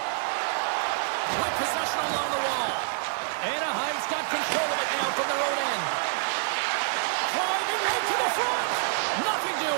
possession along the wall. Anaheim's got control of it now from their own end. Driving right to the front. Nothing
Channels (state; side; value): silent; left; digital silence